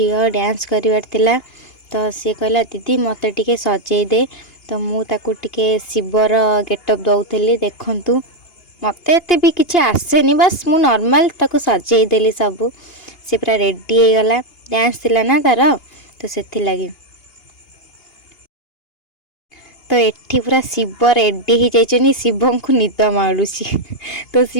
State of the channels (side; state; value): right; late; 2.8 ms